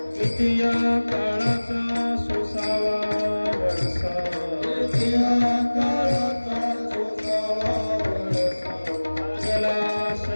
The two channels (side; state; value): both; inverted; correlation -1.00